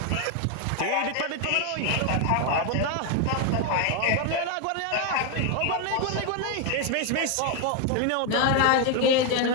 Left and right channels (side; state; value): both; different; correlation 0.01